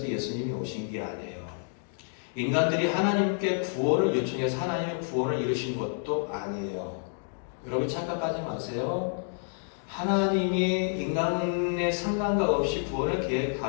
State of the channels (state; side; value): silent; right; 59 dB below the other